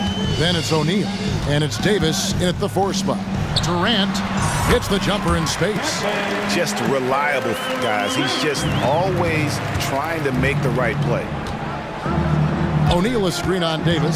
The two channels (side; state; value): both; identical; correlation 1.00